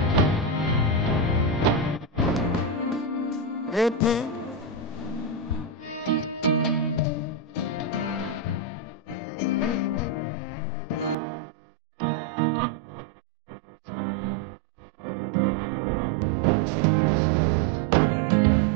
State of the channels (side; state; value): left; drops out; at 11.2 s